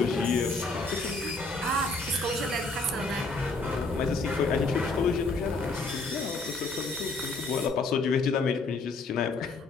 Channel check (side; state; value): right; quieter; 3.4 dB